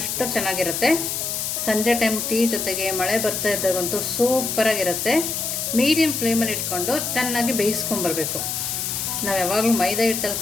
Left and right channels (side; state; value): left; noise; hiss, 2 dB below the sound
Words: ಚೆನ್ನಾಗಿರುತ್ತೆ. ಸಂಜೆ ಟೈಮ್ ಟೀ ಜೊತೆಗೆ ಮಳೆ ಬರ್ತಾ ಇದ್ದಾಗಂತೂ ಸೂಪರಾಗಿರುತ್ತೆ. ಮೀಡಿಯಮ್ ಫ್ಲೇಮಲ್ಲಿ ಇಟ್ಕೊಂಡು ಚೆನ್ನಾಗಿ ಬೇಯಿಸ್ಕೊಂಬರ್ಬೇಕು. ನಾವು ಯಾವಾಗಲೂ ಮೈದಾ ಹಿಟ್ಟಲ್ಲಿ